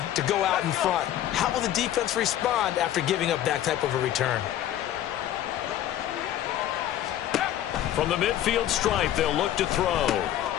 to go out in front. How will the defense respond after giving up that type of a return? From the midfield stripe, they'll look to throw.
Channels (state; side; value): quieter; right; 12.1 dB